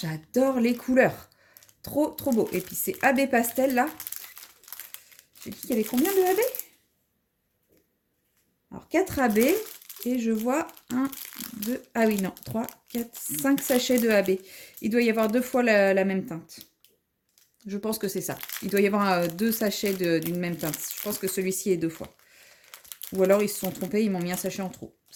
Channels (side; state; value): both; identical; correlation 1.00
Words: les couleurs. Trop, trop beau. Et puis, c'est AB Pastel, là. J'ai dit qu'il y avait combien de AB? Alors, 4 AB. Et je vois 1, 2, ah oui, non, 3, 4, 5 sachets de AB. Il doit y avoir 2 fois la même teinte. Je pense que c'est ça. Il doit y avoir 2 sachets d'une même teinte. Je pense que celui-ci est 2 fois. Ou alors, ils se sont trompés, ils m'ont mis un sachet en trop.